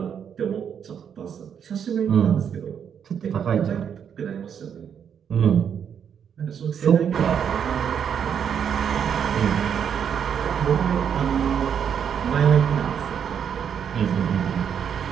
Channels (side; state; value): left; quieter; 8.0 dB